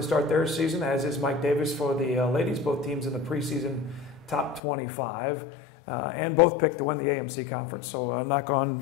start their season, as is Mike Davis for the ladies. Both teams in the preseason top 25. And both picked to win the AMC conference. So knock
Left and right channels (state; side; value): drops out; right; at 4.6 s